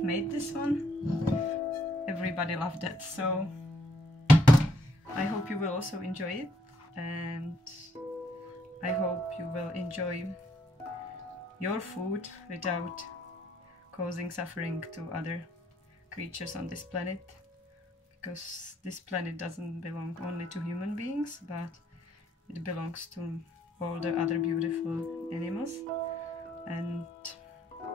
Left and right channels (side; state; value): both; normal; correlation 0.69